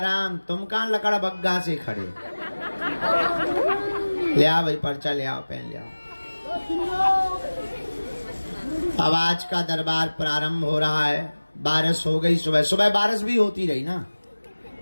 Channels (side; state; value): both; inverted; correlation -1.00